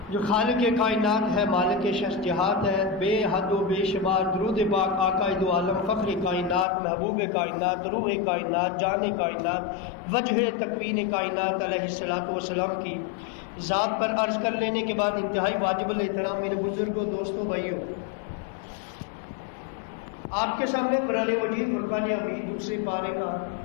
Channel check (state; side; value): drops out; right; at 6.7 s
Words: جو خالق کائنات ہے، مالک شخص جہات ہے، بے حد و بے شمار درود پاک آقا دو عالم فخر کائنات، محبوب کائنات، روح کائنات، جان کائنات، وجہ تکوین کائنات علیہ الصلوۃ والسلام کی ذات پر عرض کر لینے کے بعد انتہائی واجب الاحترام میرے بزرگوں، دوستوں، بھائیوں، آپ کے سامنے قرآن مجید فرقان حمید دوسرے پارے کا